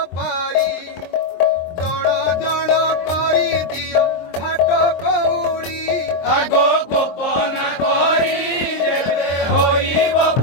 পারি জণ জণ করি দিও ঘাট কৌড়ি আগো গোপন করি যেবে হইব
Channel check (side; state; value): right; late; 23 ms